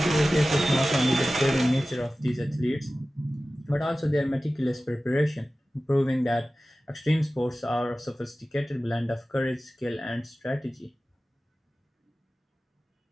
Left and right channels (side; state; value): both; normal; correlation 0.96